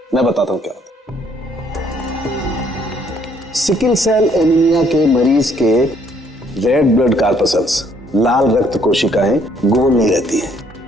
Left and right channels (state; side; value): normal; both; correlation 0.65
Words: मैं बताता हूं क्या होता है। सिकल सेल एनीमिया के मरीज के रेड ब्लड कार्पसल्स, लाल रक्त कोशिकाएं गोल नहीं रहती हैं,